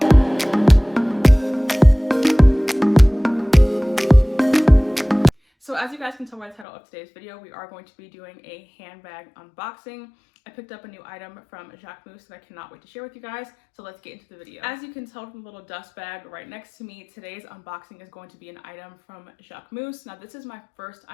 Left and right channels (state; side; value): drops out; right; at 6.7 s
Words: So as you guys can tell by the title of today's video, we are going to be doing a handbag unboxing. I picked up a new item from Jacquemus that I cannot wait to share with you guys, so let's get into the video. As you can tell from the little dust bag right next to me, today's unboxing is going to be an item from Jacquemus. Now this is my first